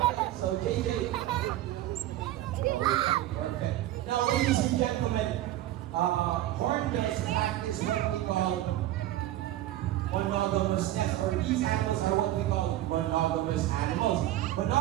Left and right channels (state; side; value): quieter; left; 14.3 dB